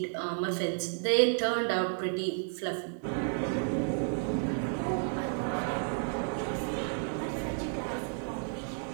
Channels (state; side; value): silent; left; 56 dB below the other